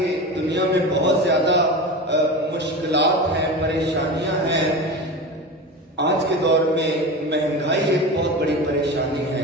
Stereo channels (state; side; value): normal; both; correlation 0.27